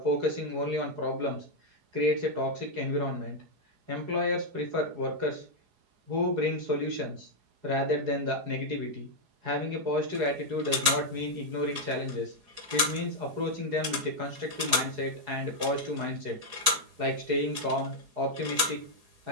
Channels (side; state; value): left; late; 4.8 ms